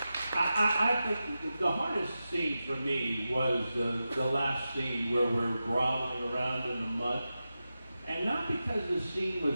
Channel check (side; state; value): both; inverted; correlation -0.92